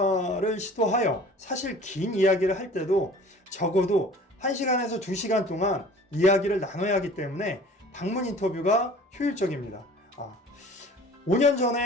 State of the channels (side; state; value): both; normal; correlation 0.46